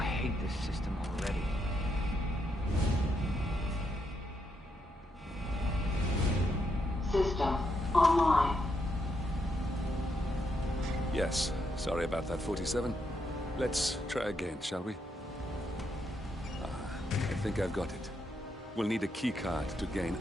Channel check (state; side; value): normal; both; correlation 0.79